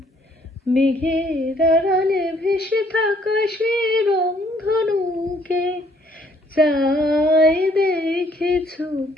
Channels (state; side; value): normal; both; correlation 0.64